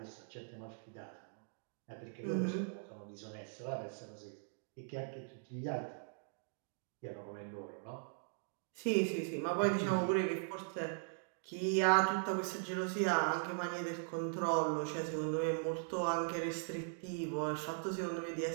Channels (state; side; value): silent; left; digital silence